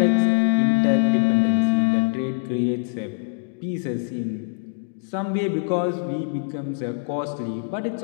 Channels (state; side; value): silent; right; digital silence